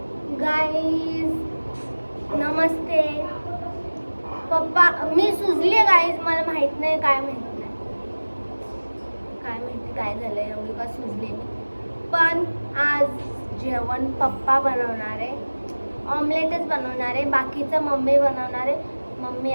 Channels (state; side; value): inverted; both; correlation -1.00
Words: गाइस नमस्ते। पप्पा मी सुजले गाइस, मला माहित नाही काय माहिती काय झालं एवढी का सुजले मी। पण आज जेवण पप्पा बनवणार आहे, ऑमलेटच बनवणार आहे, बाकीचं मम्मी बनवणार आहे। मम्मी